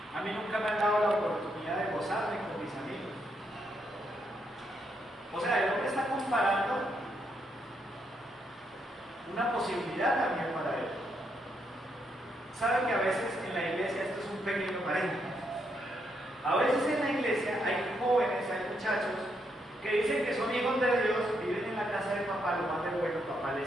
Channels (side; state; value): both; normal; correlation 0.78